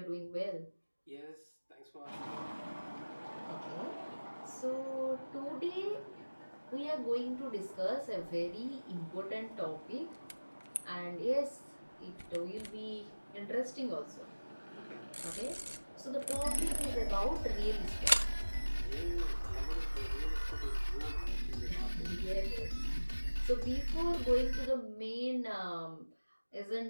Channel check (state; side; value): inverted; both; correlation -1.00